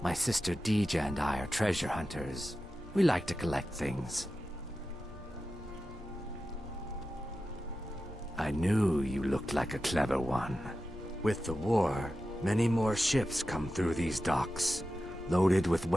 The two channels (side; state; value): left; noise; hum, 21 dB below the sound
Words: My sister Dija and I are treasure hunters. We like to collect things. I knew you looked like a clever one. With the war, many more ships come through these docks, loaded with